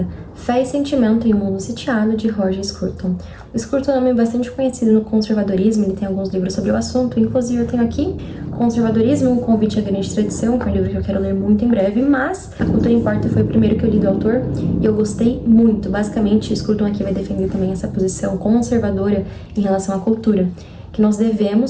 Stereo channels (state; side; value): identical; both; correlation 1.00